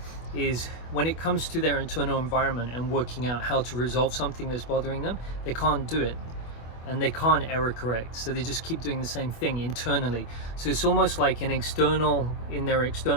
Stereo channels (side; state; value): right; late; 25 ms